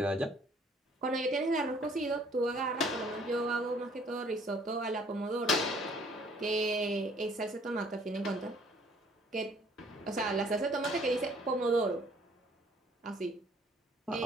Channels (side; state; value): both; normal; correlation 0.59